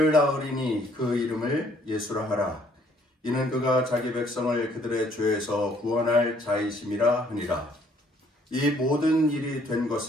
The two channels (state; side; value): normal; both; correlation 0.63